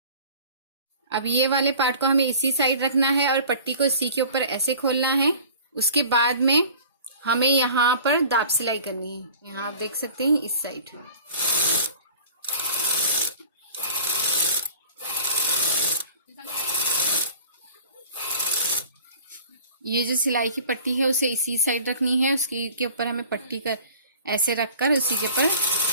अब ये वाले पार्ट को हमें इसी साइड रखना है और पट्टी को इसी के ऊपर ऐसे खोलना है। उसके बाद में हमें यहाँ पर दाब सिलाई करनी है। यहाँ आप देख सकते हैं इस साइड। ये जो सिलाई की पट्टी है उसे इसी साइड रखनी है। उसके ऊपर हमें पट्टी कर ऐसे रखकर उसी के ऊपर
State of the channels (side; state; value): both; inverted; correlation -0.45